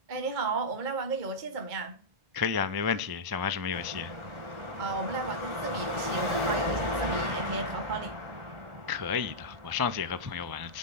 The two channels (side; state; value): left; late; 1.4 ms